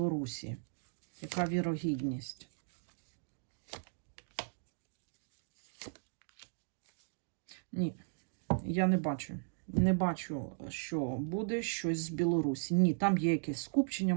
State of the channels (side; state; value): left; silent; digital silence